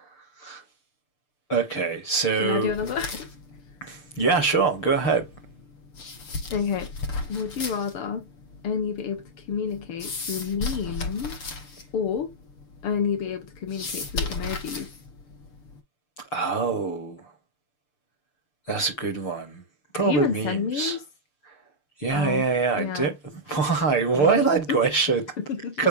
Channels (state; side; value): late; right; 6.7 ms